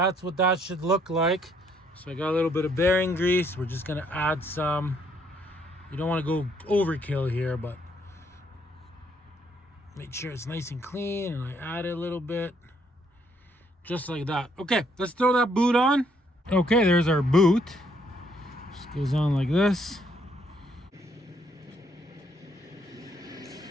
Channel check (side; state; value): both; normal; correlation 0.69